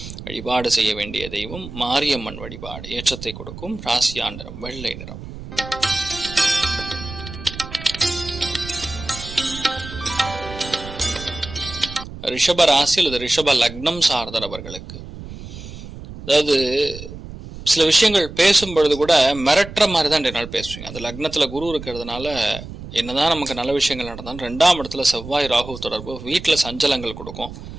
வழிபாடு செய்ய வேண்டிய தெய்வம் மாரியம்மன் வழிபாடு. ஏற்றத்தை கொடுக்கும். ராசியா நிறம் வெள்ளை நிறம். ரிஷப ராசி அல்லது ரிஷப லக்னம் சார்ந்த நபர்களுக்கு, அதாவது சில விஷயங்கள் பேசும் பொழுது கூட மிரட்டுற மாதிரி தான் இன்றைய நாள் பேசுவீங்க. அது லக்னத்துல குரு இருக்கிறதுனால என்னதான் நமக்கு நல்ல விஷயங்கள் நடந்தாலும் 2ஆம் இடத்துல செவ்வாய் ராகு தொடர்பு வீட்டில் சஞ்சலங்கள் கொடுக்கும்.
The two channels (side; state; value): right; noise; rumble, 12 dB below the sound